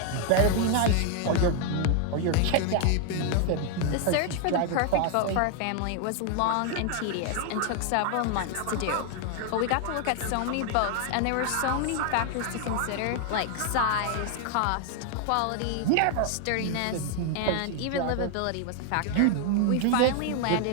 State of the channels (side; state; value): both; different; correlation 0.00